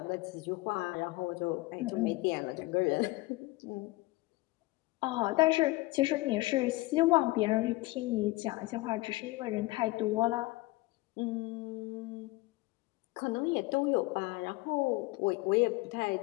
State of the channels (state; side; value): quieter; right; 20.9 dB